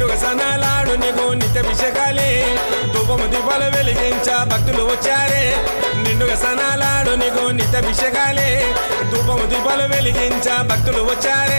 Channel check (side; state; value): both; inverted; correlation -1.00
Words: సనాలాడు నీకు నిత్యాభిషేకాలే ధూపము దీపాలు వెలిగించ భక్తులు వచ్చారే నిండుగా సనాలాడు నీకు నిత్యాభిషేకాలే ధూపము దీపాలు వెలిగించ భక్తులు